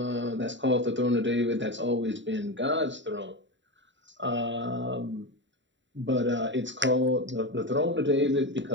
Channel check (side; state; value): left; late; 0.54 ms